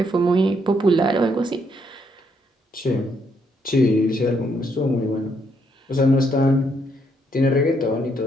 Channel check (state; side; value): normal; both; correlation 0.74